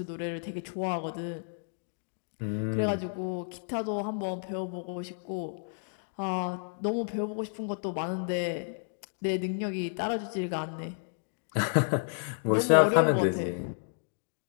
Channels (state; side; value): silent; right; digital silence